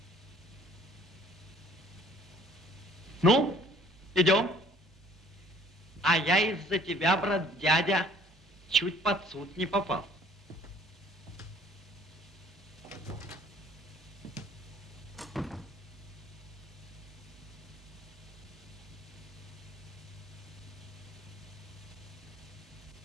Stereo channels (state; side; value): normal; both; correlation 0.55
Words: Ну, идем. А я из-за тебя, брат дядя, чуть под суд не попал.